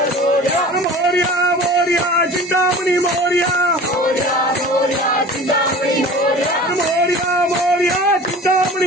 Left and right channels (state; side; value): normal; both; correlation 0.40